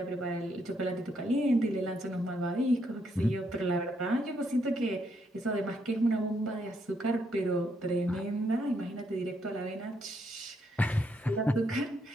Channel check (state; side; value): normal; both; correlation 0.75